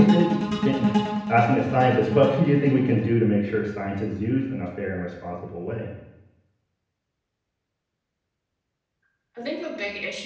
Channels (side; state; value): both; identical; correlation 1.00